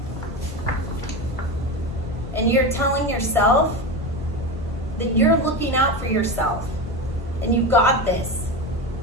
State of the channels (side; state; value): both; normal; correlation 0.21